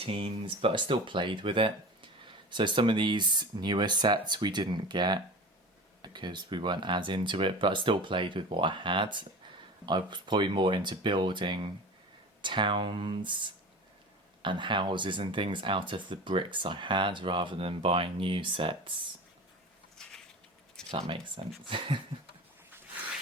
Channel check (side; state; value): both; normal; correlation 0.34